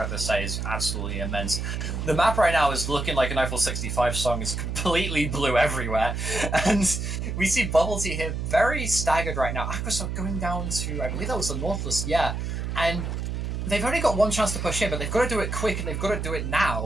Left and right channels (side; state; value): right; noise; hum, 3 dB below the sound